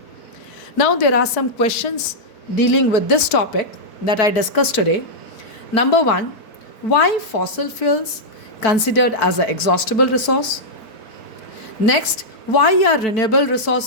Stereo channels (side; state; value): right; late; 4.5 ms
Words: Now, there are some questions dealing with this topic that I discussed today. Number one, why fossil fuels considered as an exhaustible resource? Next, why are renewable